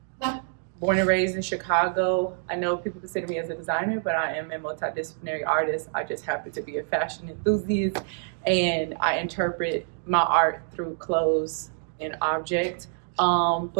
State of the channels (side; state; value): left; silent; 61 dB below the other